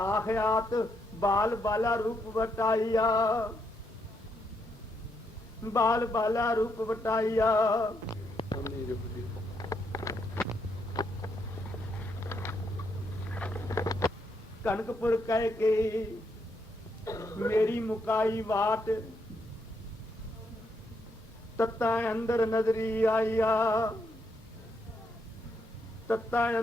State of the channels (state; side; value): normal; both; correlation 0.77